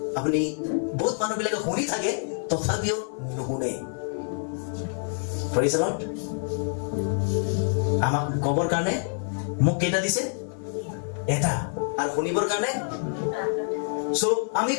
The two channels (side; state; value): right; silent; 60 dB below the other